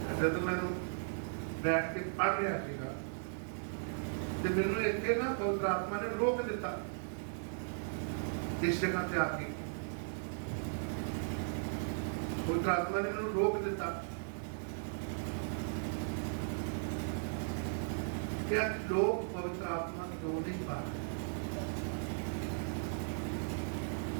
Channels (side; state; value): left; silent; digital silence